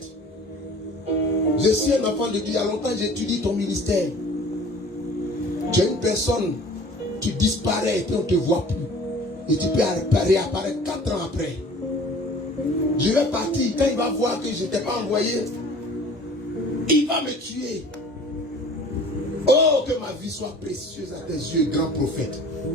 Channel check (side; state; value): both; normal; correlation 0.47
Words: je suis un enfant de Dieu. Il y a longtemps, j'étudie ton ministère. Tu es une personne, tu disparais et puis on ne te voit plus. Et tu peux réapparaître 4 ans après. Je vais partir. Quand il va voir que je ne t'ai pas envoyé, il va me tuer. Oh, que ma vie soit précieuse à tes yeux, grand prophète.